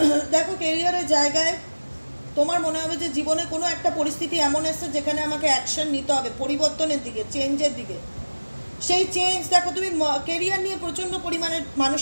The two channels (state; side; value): inverted; both; correlation -1.00